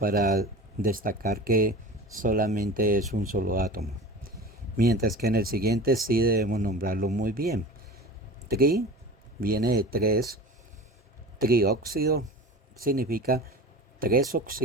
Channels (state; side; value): normal; both; correlation 0.36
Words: destacar que solamente es un solo átomo. Mientras que en el siguiente sí debemos nombrarlo muy bien. Tri viene de 3. Trióxido significa 3